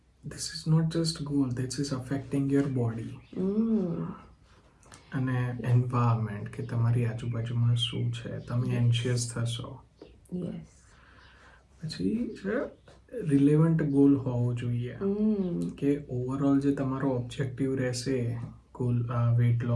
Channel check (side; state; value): both; identical; correlation 1.00